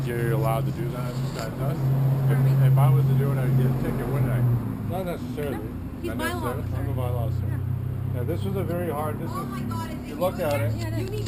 you're allowed to do that? This guy does? If I was to do it, I'd get a ticket, wouldn't I? Not necessarily. He's Not bylaw necessarily. officer. I'm a bylaw officer. Yeah, this was a very hard. This Oh is. my God! If You look at it. You need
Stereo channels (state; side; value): identical; both; correlation 1.00